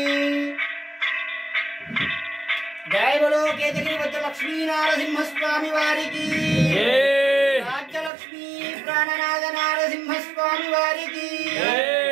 జయ బలో కేతగిరి వజ్రలక్ష్మీ నారసింహ స్వామి వారికి రాజ్యలక్ష్మీ ప్రాణనాథ నారసింహ స్వామి వారికి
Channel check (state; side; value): drops out; left; at 8.1 s